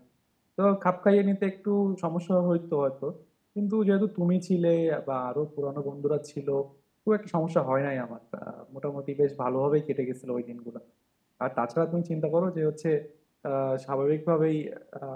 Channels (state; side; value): identical; both; correlation 1.00